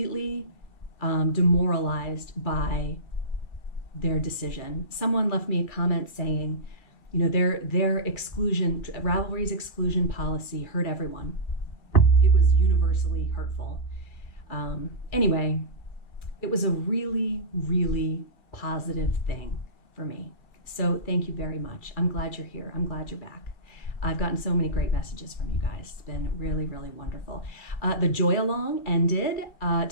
demoralized by their decision. Someone left me a comment saying, their exclusion, Ravelry's exclusion policy hurt everyone. It was universally hurtful. Anyway, it was a really, really positive thing for me. So thank you very much. I'm glad you're here. I'm glad you're back. I've gotten so many great messages from you guys. It's been really, really wonderful. The Joy Along ended.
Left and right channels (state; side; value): late; right; 2.3 ms